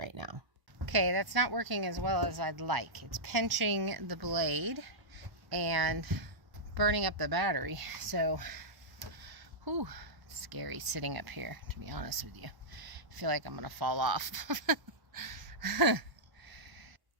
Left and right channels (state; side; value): late; left; 1.1 ms